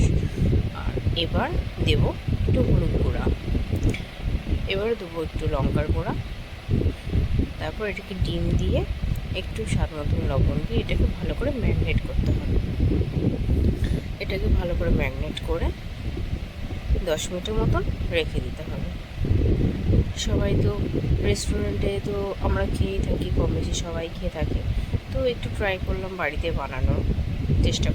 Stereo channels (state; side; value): identical; both; correlation 1.00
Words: আর এবার দেব একটু হলুদ গুঁড়া, এবার দেবো একটু লঙ্কার গুঁড়া। তারপর এটাকে ডিম দিয়ে একটু স্বাদ মতন লবণ দিয়ে এটাকে ভালো করে ম্যারিনেট করতে হবে। এটাকে ভালো করে ম্যারিনেট করে 10 মিনিটের মতন রেখে দিতে হবে। সবাই তো রেস্টুরেন্টে তো আমরা খেয়েই থাকি, কম বেশি সবাই খেয়ে থাকে, তো একটু ট্রাই করলাম বাড়িতে বানানোর চেষ্টা